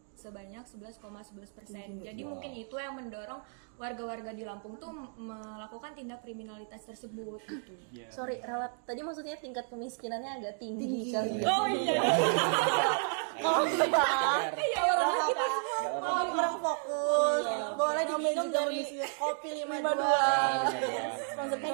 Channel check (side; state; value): left; silent; 56 dB below the other